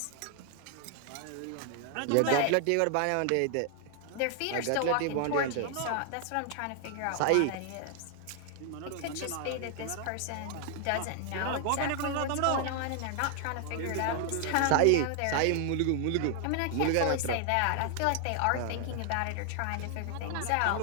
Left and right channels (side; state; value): both; different; correlation 0.00